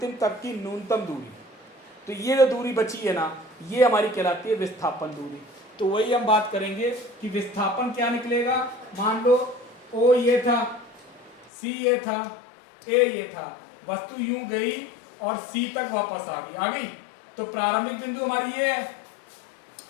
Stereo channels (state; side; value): drops out; right; at 11.5 s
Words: तक की न्यूनतम दूरी, तो ये जो दूरी बची है ना, ये हमारी कहलाती है विस्थापन दूरी। तो वही हम बात करेंगे कि विस्थापन क्या निकलेगा। मान लो ओ ये था, सी ये था, ए ये था, वस्तु यूं गई और सी तक वापस आ गई। तो प्रारंभिक बिंदु हमारी ये है,